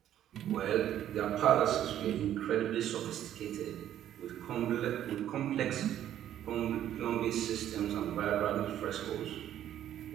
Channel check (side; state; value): left; quieter; 11.3 dB